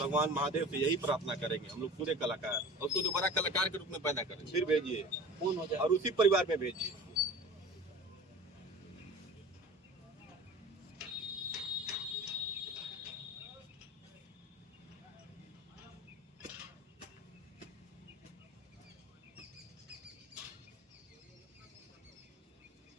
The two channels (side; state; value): both; normal; correlation 0.38